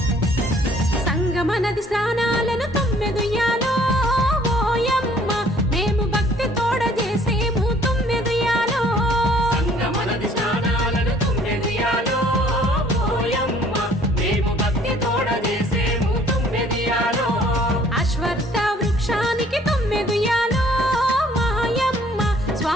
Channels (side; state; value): both; normal; correlation 0.58